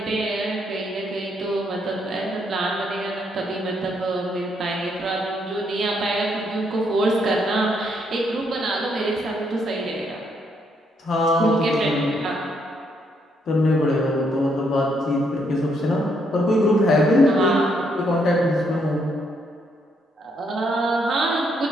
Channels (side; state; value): both; normal; correlation 0.74